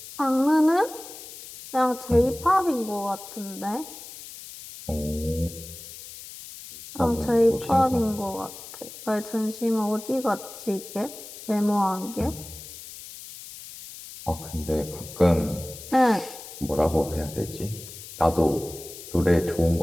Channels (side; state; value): left; noise; hiss, 14 dB below the sound